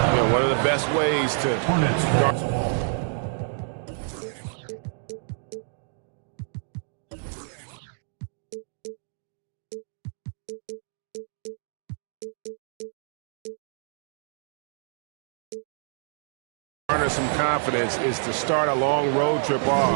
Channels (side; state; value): left; silent; digital silence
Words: One of the best ways to guard. Garner some confidence is to start a long road trip